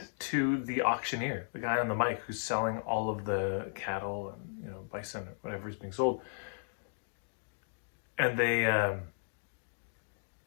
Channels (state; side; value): silent; right; digital silence